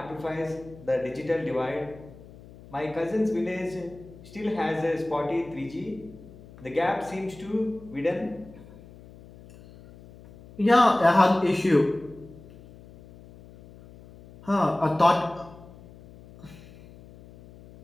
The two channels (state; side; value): noise; left; hum, 20 dB below the sound